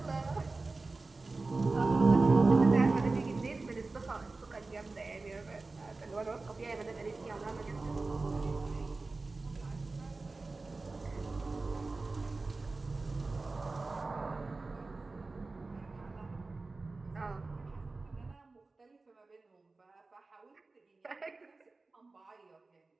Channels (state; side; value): quieter; left; 3.6 dB